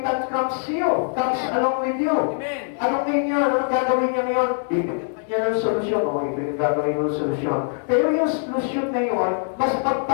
comes along with you. Amen. Anong ngayon? Anong gagawin niya ngayon? Ibigyan ka niya ng solusyon. O, ito yung gagawin mo ng solusyon. Pero yung solusyon na yun, mas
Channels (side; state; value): right; silent; digital silence